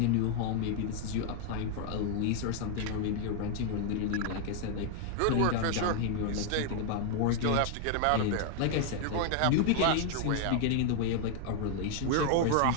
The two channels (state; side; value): different; both; correlation 0.00